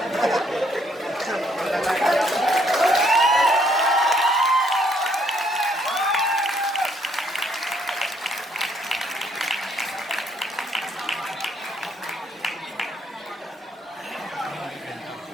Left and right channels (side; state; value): both; normal; correlation 0.68